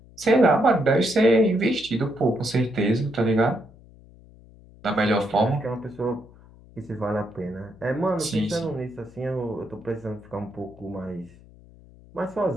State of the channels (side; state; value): left; noise; hum, 23 dB below the sound